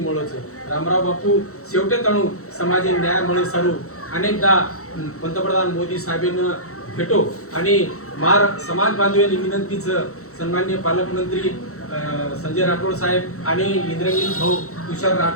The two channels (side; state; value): right; late; 0.64 ms